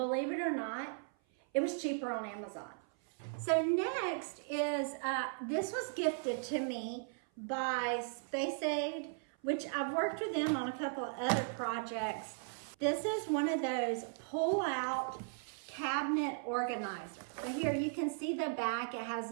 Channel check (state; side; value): silent; left; 53 dB below the other